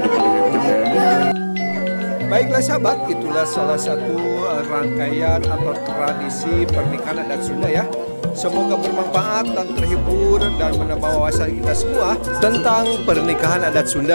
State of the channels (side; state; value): both; inverted; correlation -1.00